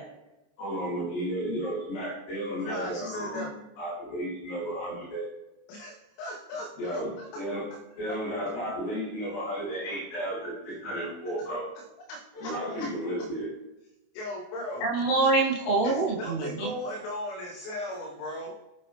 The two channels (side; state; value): right; late; 28 ms